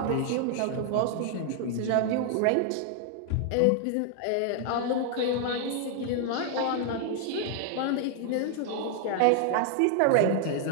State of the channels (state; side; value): different; both; correlation 0.00